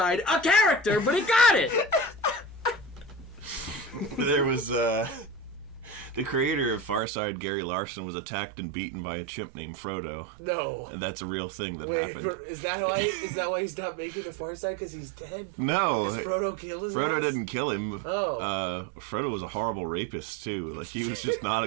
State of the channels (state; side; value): drops out; left; at 7.0 s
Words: a character? But he got it. There was the creator of Farside, Gary Larson, was attacked and beaten by a chimp named Frodo, No. and that's a real thing that Wait, happened. is that why? Is that why he's not making the Far Side? Because he's dead? No, Because Frodo killed his Frodo ass? didn't kill him. Oh. Frodo was a horrible rapist too. Like, he was just not a